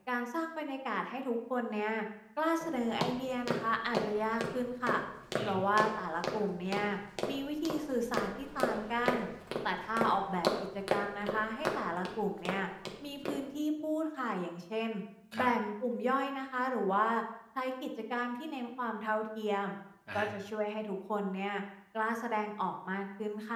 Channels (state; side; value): identical; both; correlation 1.00